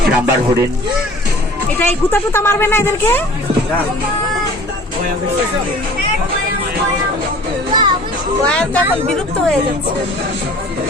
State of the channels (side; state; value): both; normal; correlation 0.47